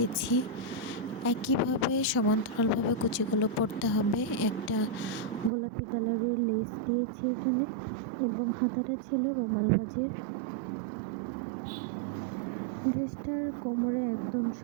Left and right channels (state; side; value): drops out; left; at 5.5 s